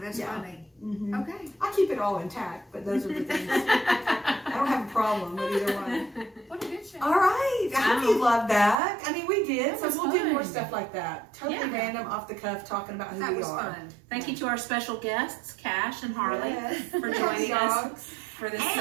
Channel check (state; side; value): drops out; left; at 8.8 s